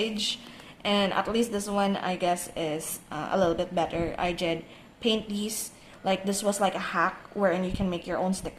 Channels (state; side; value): identical; both; correlation 1.00